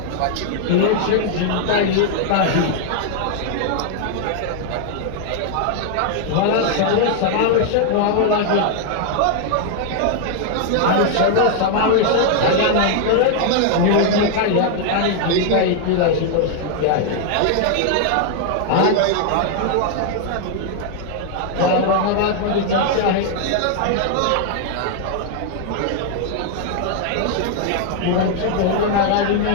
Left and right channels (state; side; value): different; both; correlation 0.00